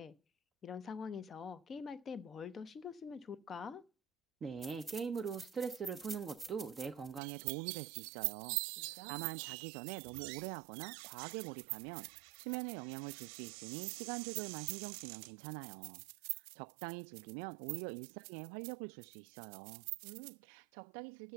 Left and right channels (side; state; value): left; drops out; at 7.2 s